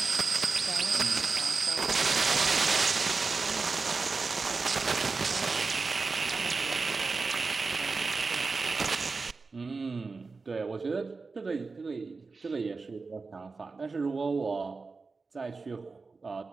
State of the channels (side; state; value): left; quieter; 4.2 dB